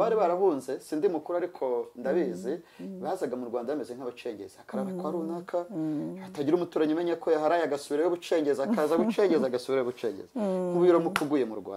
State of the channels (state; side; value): identical; both; correlation 1.00